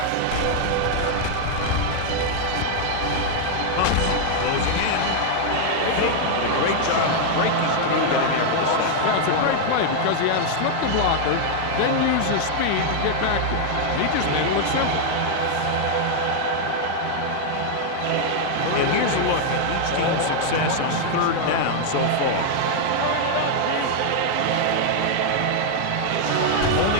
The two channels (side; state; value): both; different; correlation 0.00